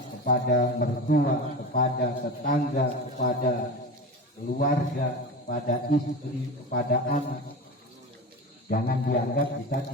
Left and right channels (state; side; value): normal; both; correlation 0.28